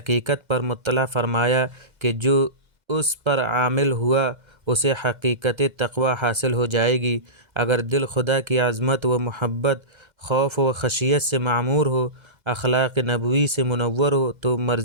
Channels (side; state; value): left; late; 2.0 ms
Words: پر مطلع فرمایا کہ جو اس پر عامل ہوا اسے حقیقت تقوی حاصل ہو جائے گی۔ اگر دل خدا کی عظمت و محبت، خوف و خشیت سے معمور ہو، اخلاق نبوی سے منور ہو تو